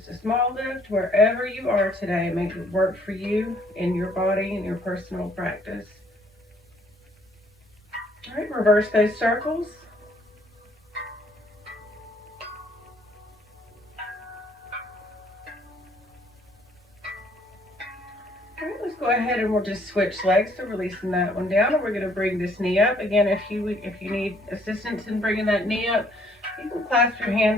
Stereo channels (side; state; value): both; normal; correlation 0.63